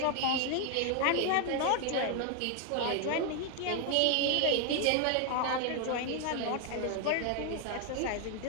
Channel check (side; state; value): both; different; correlation 0.01